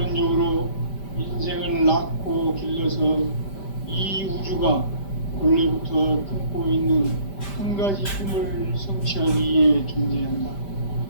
인생을 낳고 길러서 이 우주가 원래부터 품고 있는 한 가지 꿈을 성취하기 위해 존재한다.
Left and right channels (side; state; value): right; late; 5.1 ms